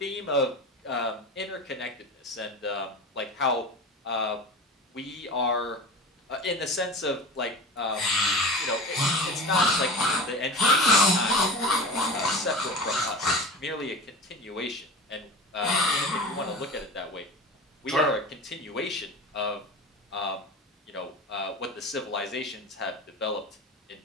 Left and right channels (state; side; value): normal; both; correlation 0.32